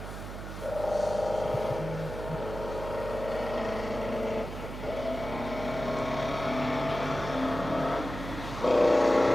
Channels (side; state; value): right; noise; hum, 9 dB below the sound